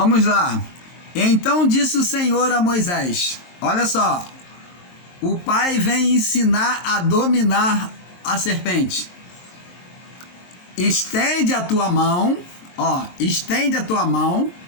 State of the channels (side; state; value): right; late; 23 ms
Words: lá. Então disse o Senhor a Moisés, olha só, o pai vem ensinar a dominar a serpente. Estende a tua mão, estende a tua mão.